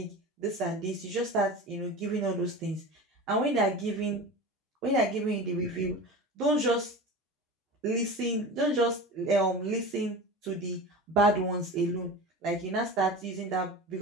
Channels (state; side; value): normal; both; correlation 0.31